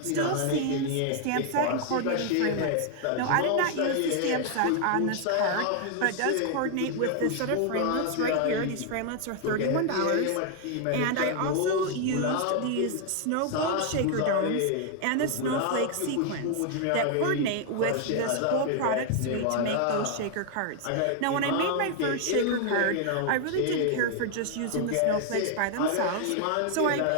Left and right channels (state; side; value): different; both; correlation 0.00